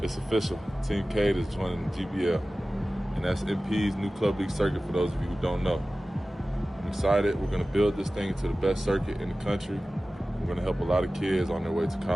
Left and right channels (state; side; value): normal; both; correlation 0.96